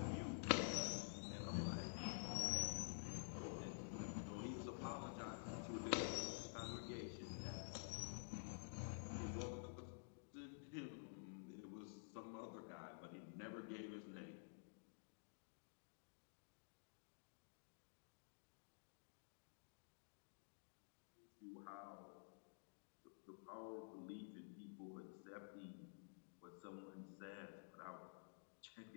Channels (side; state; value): right; silent; digital silence